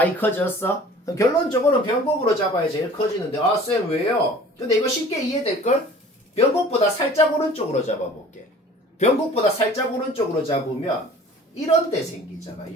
커졌어? 결론적으로는 변곡으로 잡아야 제일 커지는데, 쌤 왜요? 근데 이거 쉽게 이해될걸? 변곡보다 살짝 오른쪽으로 잡아볼게. 변곡보다 살짝 오른쪽으로 잡으면 이런 데 생기잖아.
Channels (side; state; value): both; normal; correlation 0.47